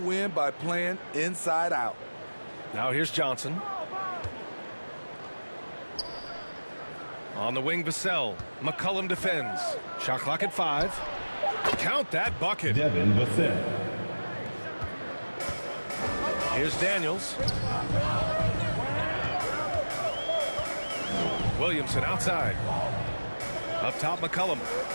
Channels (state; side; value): inverted; both; correlation -1.00